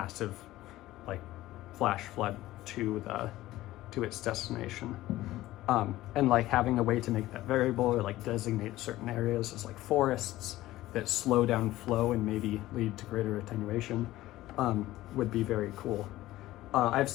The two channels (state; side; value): quieter; right; 16.1 dB